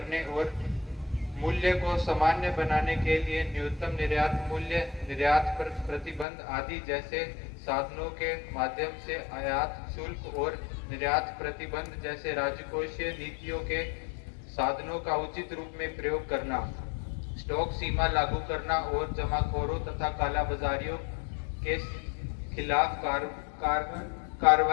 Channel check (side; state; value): right; drops out; at 6.2 s